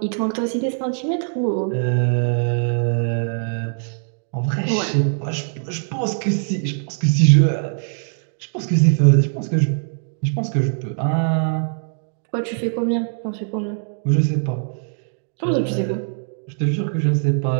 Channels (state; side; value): silent; left; digital silence